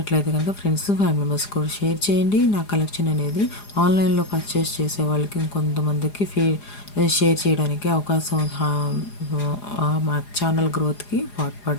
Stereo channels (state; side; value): late; right; 4.9 ms